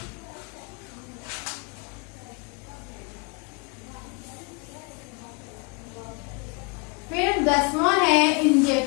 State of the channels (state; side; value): quieter; right; 32.4 dB